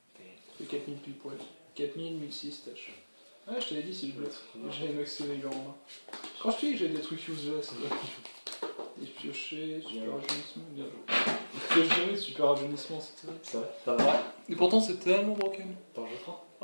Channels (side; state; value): both; inverted; correlation -1.00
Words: T'es. C'est 4000 pile poil. 4000, 1006 tâches. Ouais, je t'avais dit si je bluff. J'avais maxé les gens en main. Quand je te dis que j'ai des trucs useless, des piochés, super rajeunissement, bien joué. Pioche jamais, super rajeunissement, c'est terrible. Ça va? Ça va? Et pourtant c'est tellement broken. T'en joues 3?